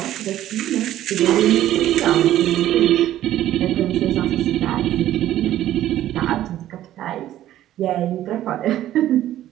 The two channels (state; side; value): quieter; left; 13.0 dB